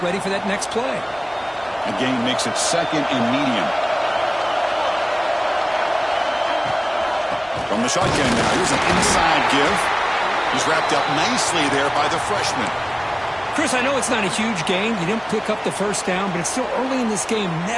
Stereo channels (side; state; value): both; identical; correlation 1.00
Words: ready for that next play. The gain makes it second and medium. From the shotgun now, here's an inside give. He's wrapped up nicely there by the freshman. Chris, I know it's not a huge gain. You didn't pick up the first down, but it's still early in this game.